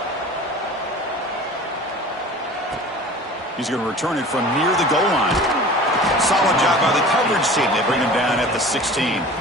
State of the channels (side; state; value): both; normal; correlation 0.41